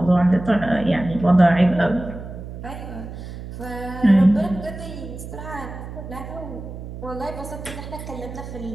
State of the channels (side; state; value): right; noise; hum, 10 dB below the sound